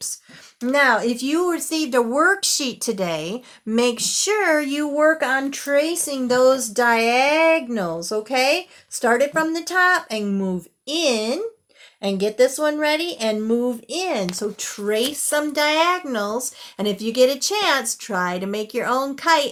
Now, if you received a worksheet today, make sure you work on tracing those diagonals, okay? Start it from the top and move in and get this one ready and move in. So trace some diagonals, and if you get a chance, try to make your own kite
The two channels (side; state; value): both; identical; correlation 1.00